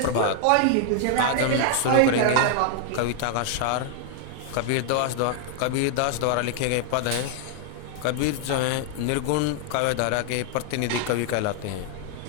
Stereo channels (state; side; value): different; both; correlation 0.00